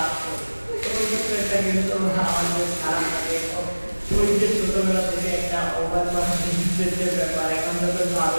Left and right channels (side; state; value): both; inverted; correlation -1.00